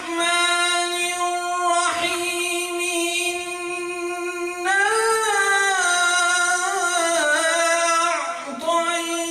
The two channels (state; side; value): identical; both; correlation 1.00